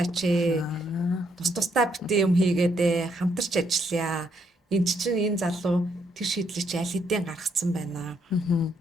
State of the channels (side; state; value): both; normal; correlation 0.74